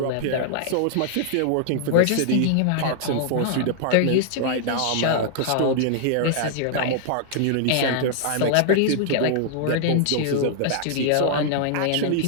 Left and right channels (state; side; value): different; both; correlation -0.01